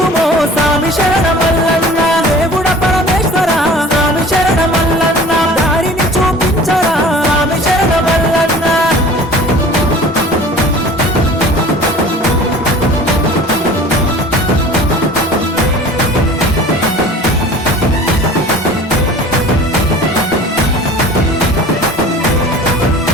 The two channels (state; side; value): normal; both; correlation 0.44